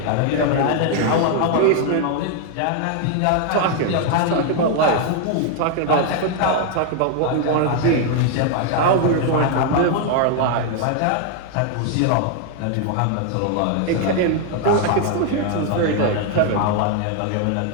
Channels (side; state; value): both; different; correlation 0.00